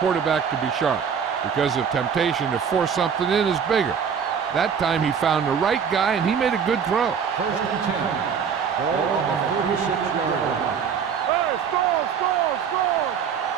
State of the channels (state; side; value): quieter; left; 7.0 dB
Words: quarterback to be sharp, because the temptation to force something in is bigger. That time he found the right guy, and he made a good throw. 1st and 10. Ball on the 36-yard line. Hey, score.